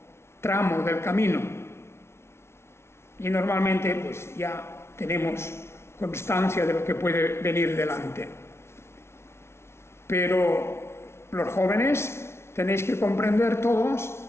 tramo del camino. Y normalmente, pues ya tenemos constancia de lo que puede venir delante. Pero los jóvenes tenéis que comprender todos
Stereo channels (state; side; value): late; right; 0.12 ms